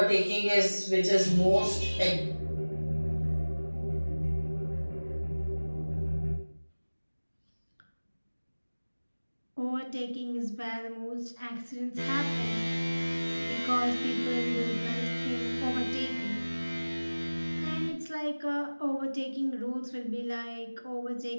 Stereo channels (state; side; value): inverted; both; correlation -1.00